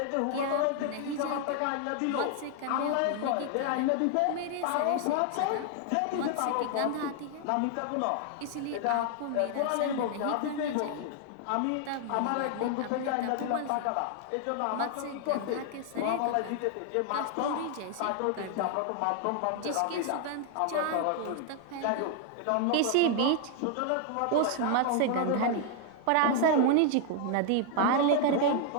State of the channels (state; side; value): different; both; correlation 0.00